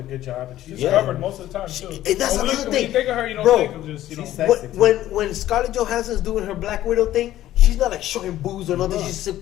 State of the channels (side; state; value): right; quieter; 13.6 dB